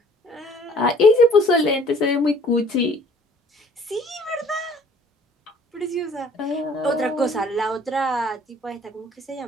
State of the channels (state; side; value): normal; both; correlation 0.56